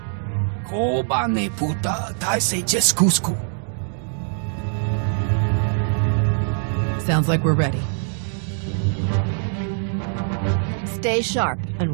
Koba ne puta taise jeskusku. Sounds like we're ready. Stay sharp and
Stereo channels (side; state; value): left; silent; digital silence